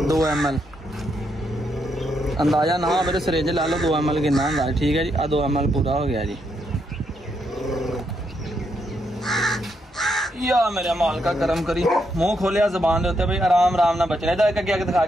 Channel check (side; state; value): both; normal; correlation 0.78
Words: 2 ml। ਅੰਦਾਜ਼ਾ ਨਾ ਮੇਰੇ ਸਿਰਿੰਜ ਲਾ ਲਓ 2 ml ਕਿੰਨਾ ਹੁੰਦਾ। ਠੀਕ ਹੈ ਜੀ, ਆ 2 ml ਪੂਰਾ ਹੋ ਗਿਆ ਜੀ। ਯਾ ਮੇਰੇ ਮਾਲਕਾ ਕਰਮ ਕਰੀ। ਮੂੰਹ ਖੋਲਿਆ ਜ਼ਬਾਨ ਦੇ ਉੱਤੇ ਬਈ ਆਰਾਮ ਨਾਲ ਬਚਣਾ। ਇਹਦਾ ਇੱਕ ਅੱਗੇ ਦਿਖਾ